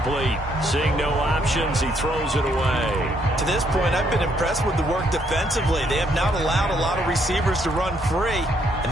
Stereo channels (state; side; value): normal; both; correlation 0.71